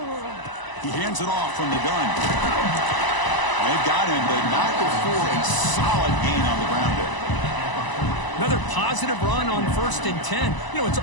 He hands it off from the gun. They've got him, but not before a solid gain on the ground there. Another positive run on 1st and 10. You know, it's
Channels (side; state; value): right; late; 1.0 ms